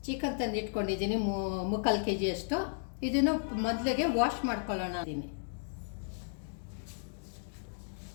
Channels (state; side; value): silent; right; digital silence